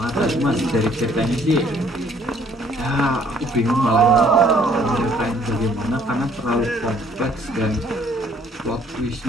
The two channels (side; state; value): both; normal; correlation 0.61